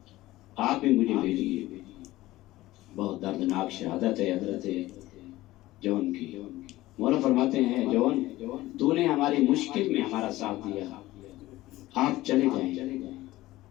آپ بھی مجھے بھیجیے۔ بہت دردناک شہادت ہے حضرت جون کی۔ مولا فرماتے ہیں جون تو نے ہماری مشکل میں ہمارا ساتھ دیا، آپ چلے جائیں،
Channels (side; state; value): right; quieter; 17.2 dB